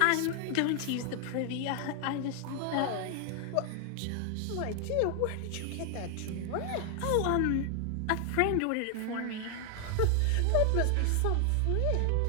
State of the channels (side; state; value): both; different; correlation 0.00